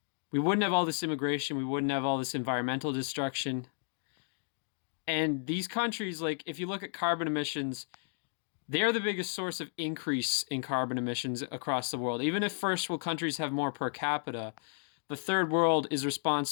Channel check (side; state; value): right; silent; digital silence